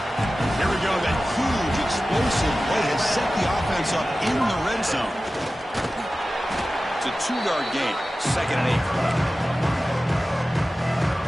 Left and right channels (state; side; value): normal; both; correlation 0.95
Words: Here we go. That huge, explosive play has set the offense up in the red zone. It's a 2-yard gain. 2nd and 8 coming up.